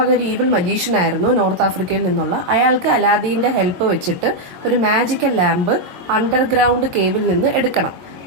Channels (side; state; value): left; late; 22 ms